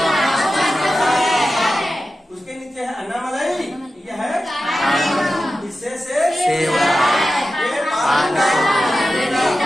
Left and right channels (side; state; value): both; normal; correlation 0.93